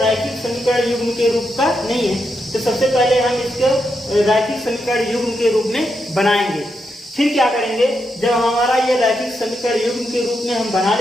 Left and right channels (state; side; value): normal; both; correlation 0.83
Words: समीकरण युग्म के रूप का नहीं है। तो सबसे पहले हम इसको रैखिक समीकरण युग्म के रूप में बनाएंगे। फिर क्या करेंगे, जब हमारा ये रैखिक समीकरण युग्म के रूप में हम बना